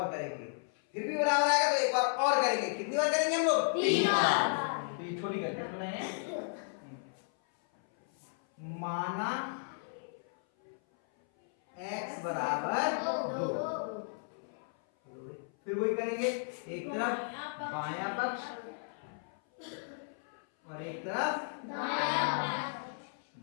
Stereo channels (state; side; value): silent; right; 55 dB below the other